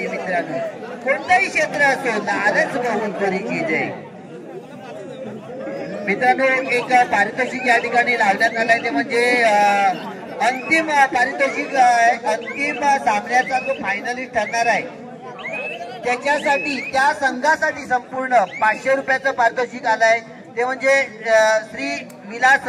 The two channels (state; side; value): identical; both; correlation 1.00